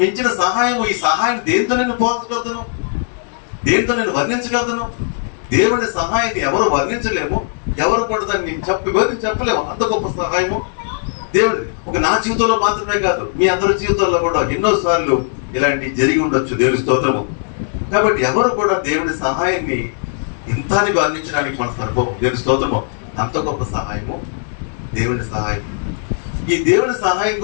మించిన సహాయం, ఈ సహాయం దేంతో నేను పోల్చగలుగుతాను, దేంతో నేను వర్ణించగలుగుతాను. దేవుడి సహాయాన్ని ఎవరు వర్ణించలేము, ఎవరు కూడా దాన్ని చెప్పలేము. అంత గొప్ప సహాయము దేవుడి. ఒక నా జీవితంలో మాత్రమే కాదు, మీ అందరి జీవితాల్లో కూడా ఎన్నోసార్లు ఇలాంటి జరిగి ఉండొచ్చు. దేవుడి స్తోత్రము. కాబట్టి ఎవరు కూడా దేవుడి సహాయాన్ని ఇంతాన్ని వర్ణించడానికి మన సరిపోవు. దేవుడి స్తోత్రము. అంత గొప్ప సహాయము దేవుడి సహాయం. ఈ దేవుడి సహాయం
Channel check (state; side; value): silent; right; 59 dB below the other